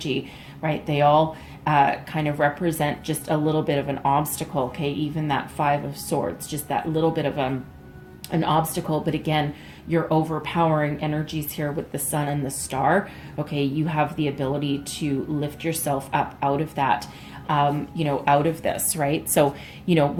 right? They all kind of represent just a little bit of an obstacle, okay? Even that Five of Swords, just that little bit of an obstacle. But again, your overpowering energies here with the Sun and the Star, okay? You have the ability to lift yourself up out of that, out of this, right? So,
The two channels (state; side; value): identical; both; correlation 1.00